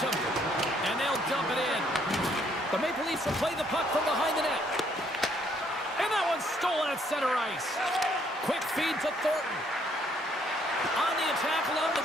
And they'll dump it in. The Maple Leafs will play the puck from behind the net. And that one's stolen at center ice. Quick feed to Thornton. On the attack along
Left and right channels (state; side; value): normal; both; correlation 0.68